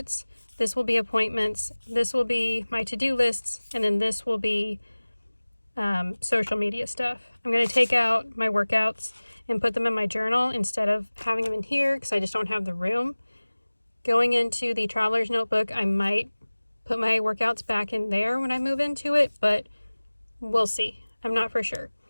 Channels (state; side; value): inverted; both; correlation -1.00